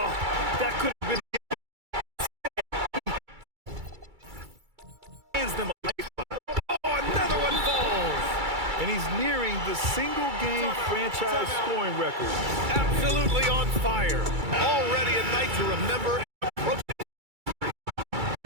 that could have been. Hands them a lifeline. Oh, another one falls. And he's nearing the single-game franchise scoring record. Absolutely on fire. Already a night to remember.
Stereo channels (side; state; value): left; late; 2.3 ms